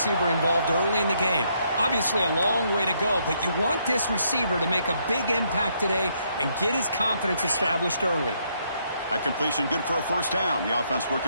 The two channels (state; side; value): inverted; both; correlation -0.73